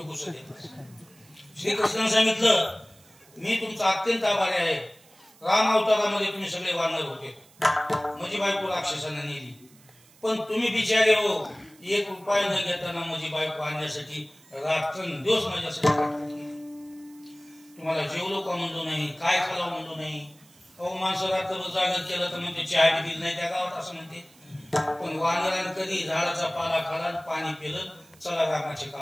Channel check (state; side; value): noise; right; hiss, 27 dB below the sound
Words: घुसत येतात. श्रीकृष्णाने सांगितलं मी तुमचा अत्यंत आभारी आहे. राम अवतारामध्ये तुम्ही सगळे वानर होते, माझी बायको राक्षसांना नेली, पण तुम्ही बिचारे हो 1 रुपया न घेताना माझी बायको आणण्यासाठी रात्रंदिवस माझ्यासाठी तुम्हाला जेवलो का म्हणलो नाही, काय खालाव म्हणलो नाही. अहो माणसं रात्रभर जागर केलं तर म्हणते चहा बी दिली नाही त्या गावात असं म्हणते. पण वानरानं कधी झाडाचा पाला खाला पाणी पिलं चला रामाची